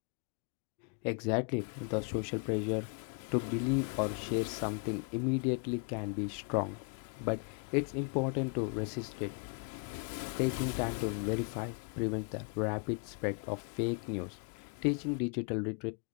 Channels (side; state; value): right; quieter; 35.8 dB